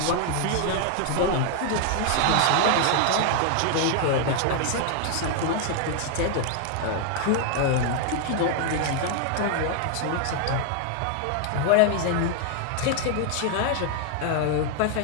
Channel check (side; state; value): both; different; correlation 0.00